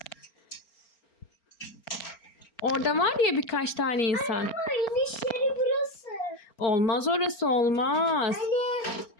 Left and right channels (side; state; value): right; late; 4.4 ms